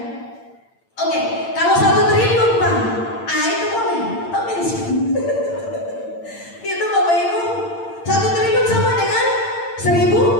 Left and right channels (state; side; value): late; right; 8.8 ms